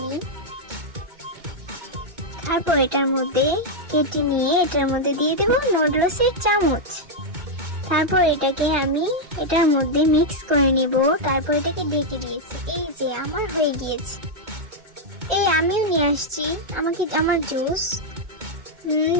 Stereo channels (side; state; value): left; late; 2.2 ms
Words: তারপর এটার মধ্যে কেটে নিয়ে এটার মধ্যে দিয়ে দেব নুডলসের চামচ। তারপর এটাকে আমি এটার মধ্যে মিক্স করে নিব। তারপর এটাকে ঢেকে দিয়েছি। এই যে আমার হয়ে গিয়েছে। এই আমিও নিয়ে আসছি আমার জুস।